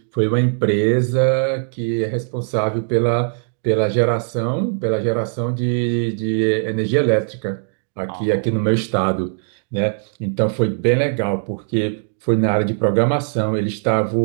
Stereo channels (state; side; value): silent; left; digital silence